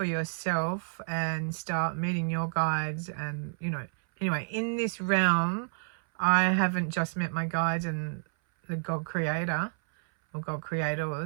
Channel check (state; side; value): silent; left; 58 dB below the other